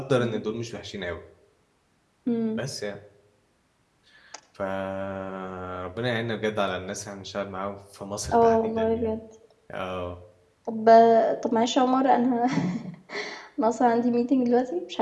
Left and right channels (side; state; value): both; identical; correlation 1.00